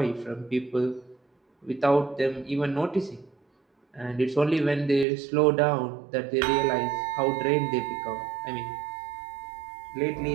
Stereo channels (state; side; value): drops out; left; at 5.1 s